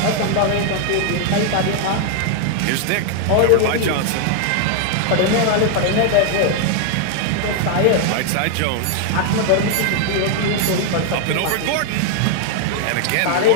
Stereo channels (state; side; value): different; both; correlation 0.00